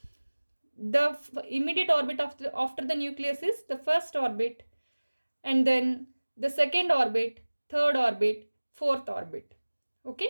The immediate orbit after the nucleus is the first orbit, and then the second orbit, third orbit, fourth orbit.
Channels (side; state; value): both; inverted; correlation -1.00